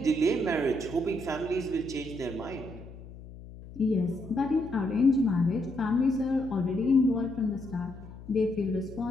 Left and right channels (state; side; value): noise; left; hum, 16 dB below the sound